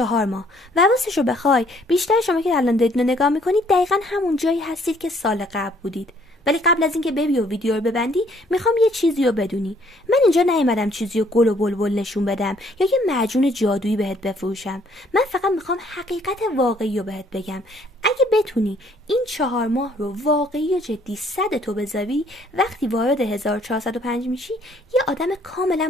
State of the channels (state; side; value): normal; both; correlation 0.63